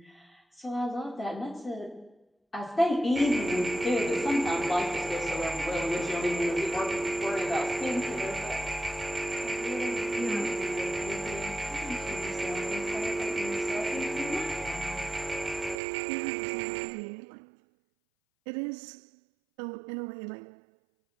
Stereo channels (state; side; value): drops out; left; at 15.8 s